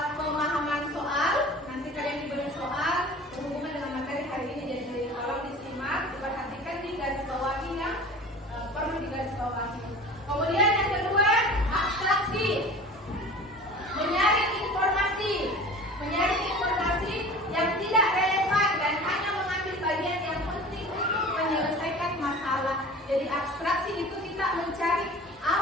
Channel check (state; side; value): normal; both; correlation 0.39